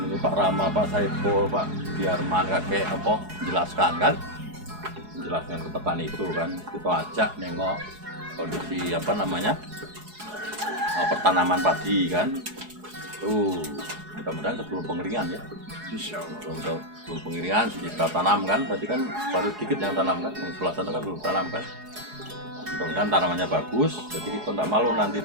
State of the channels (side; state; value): left; late; 4.8 ms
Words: ini Pak Rama, Pak Saiful, Pak Biarman, kakek apa menjelaskan kan, menjelaskan ke petani itu kan. Kita ajak nengok kondisi apa namanya pertanaman padi kan. Tuh mudah-mudahan sebelum pengeringan ya. Insyaallah. Belum pengeringan sudah tanam kan, berarti kan baru sedikit yang tanam kan, yang sebelah sana kan belum tanam kan. Mudah-mudahan tanamannya bagus, jadi kita tidak malu nanti